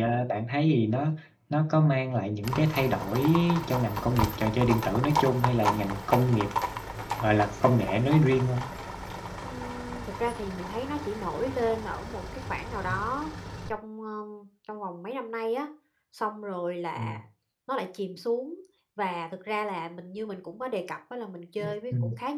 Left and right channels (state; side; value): identical; both; correlation 1.00